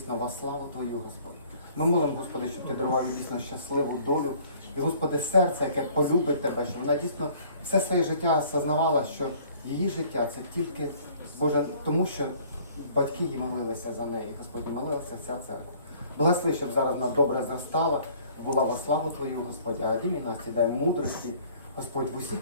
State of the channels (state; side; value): inverted; both; correlation -0.55